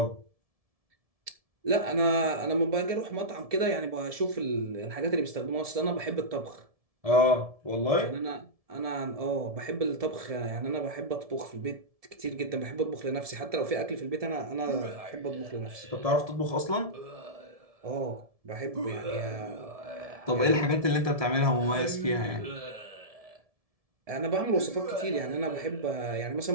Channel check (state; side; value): late; left; 1.7 ms